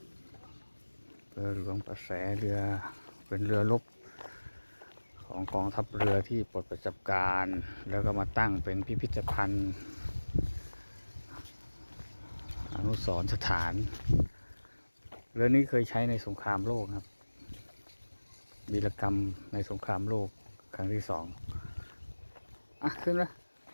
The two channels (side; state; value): both; inverted; correlation -1.00